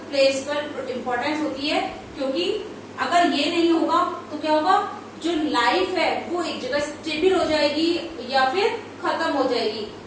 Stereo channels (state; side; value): identical; both; correlation 1.00